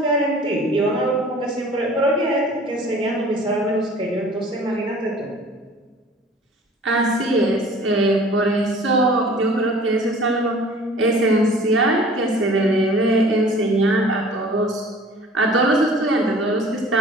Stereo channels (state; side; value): normal; both; correlation 0.47